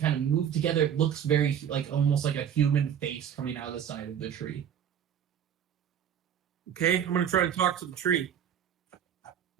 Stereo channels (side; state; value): left; quieter; 9.1 dB